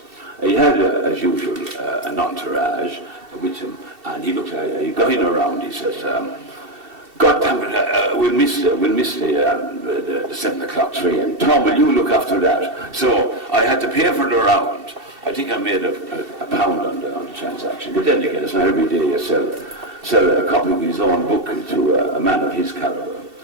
He had, as usual, an entourage with him, and he got in around. He says, "God damn it, we'll miss the 7 o'clock train. Tom, will you look after that?" So I had to pay for the round. I think I made a pound on the transaction. But then again, it's not every day you sell a copy of his own book to a man of his caliber.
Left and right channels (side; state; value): left; late; 2.7 ms